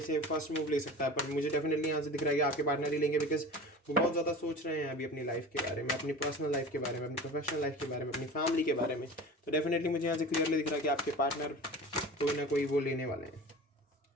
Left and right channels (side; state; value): both; normal; correlation 0.36